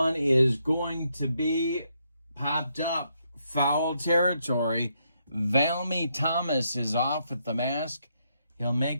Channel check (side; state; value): both; inverted; correlation -0.77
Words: is going to be popped up. Foul territory. Valmy Thomas is off at the mask. He'll